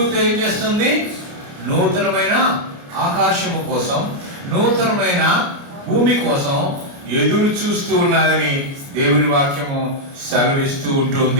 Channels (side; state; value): left; late; 29 ms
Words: ఏం చేస్తుంది? నూతనమైన ఆకాశము కోసం, నూతనమైన భూమి కోసం ఎదురు చూస్తూ ఉన్నదని దేవుని వాక్యము సెలవిస్తూ